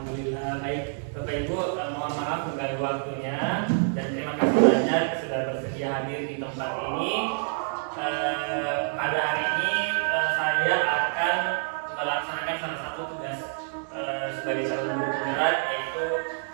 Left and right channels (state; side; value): silent; left; 60 dB below the other